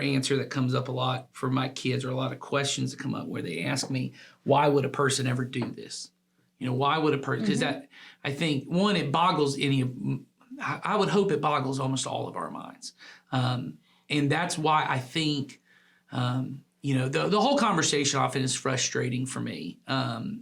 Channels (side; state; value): both; identical; correlation 1.00